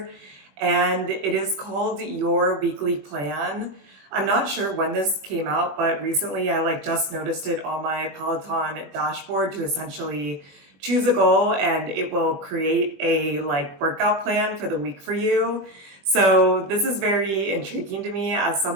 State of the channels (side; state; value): left; late; 21 ms